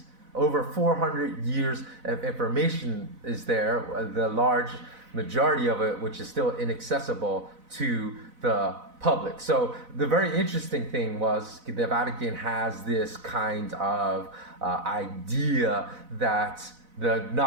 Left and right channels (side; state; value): left; late; 4.0 ms